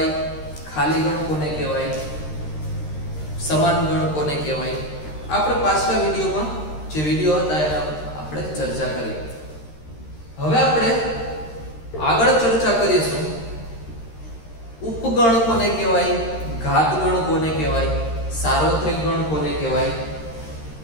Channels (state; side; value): late; right; 13 ms